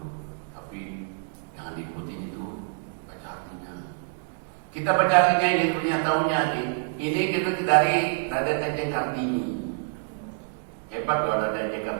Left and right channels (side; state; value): left; silent; digital silence